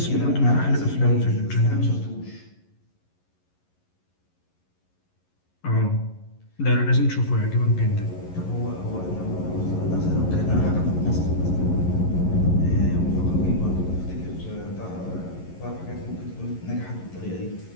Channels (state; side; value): late; right; 11 ms